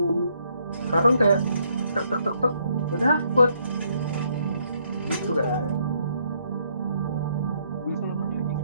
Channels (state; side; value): inverted; both; correlation -0.71